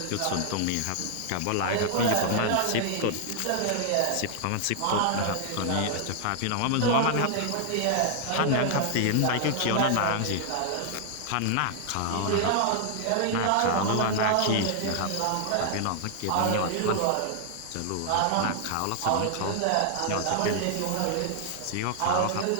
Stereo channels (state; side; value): different; both; correlation 0.00